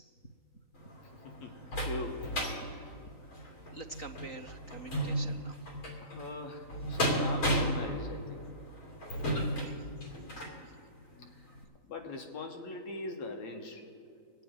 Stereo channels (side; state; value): right; late; 3.9 ms